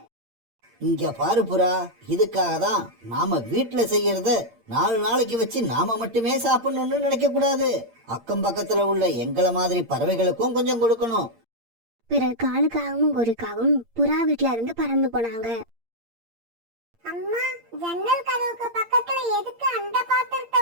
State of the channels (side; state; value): left; late; 8.7 ms